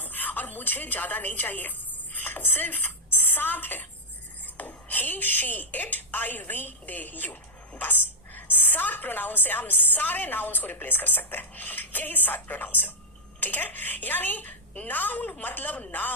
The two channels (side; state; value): both; normal; correlation -0.04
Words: और मुझे ज्यादा नहीं चाहिए, सिर्फ 7 है, he, she, it, I, we, they, you, बस 7 प्रोनाउन से हम सारे नाउन्स को रिप्लेस कर सकते हैं। यही 7 प्रोनाउन है, ठीक है। यानी नाउन मतलब